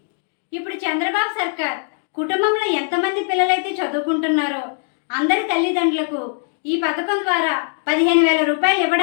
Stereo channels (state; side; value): silent; right; 65 dB below the other